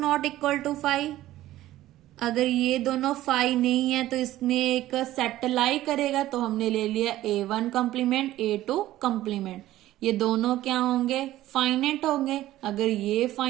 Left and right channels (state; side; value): quieter; left; 14.8 dB